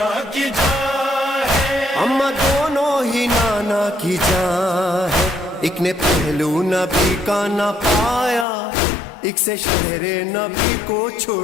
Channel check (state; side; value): drops out; right; at 8.5 s